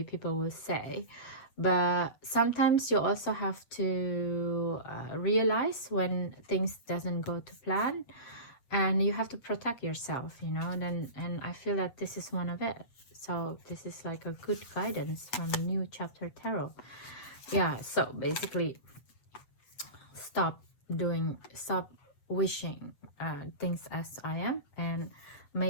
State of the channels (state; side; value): late; right; 7.9 ms